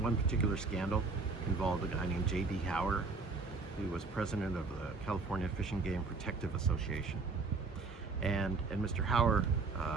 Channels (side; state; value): left; quieter; 4.2 dB